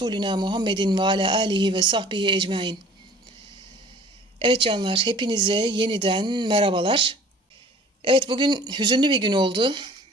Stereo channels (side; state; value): both; normal; correlation 0.49